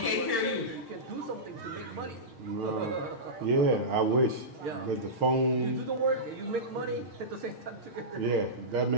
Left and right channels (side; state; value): right; late; 6.4 ms